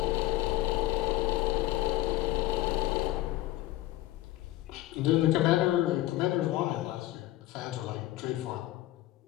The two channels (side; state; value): right; quieter; 16.2 dB